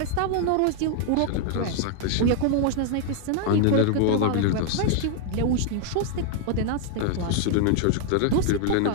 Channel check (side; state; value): both; different; correlation 0.00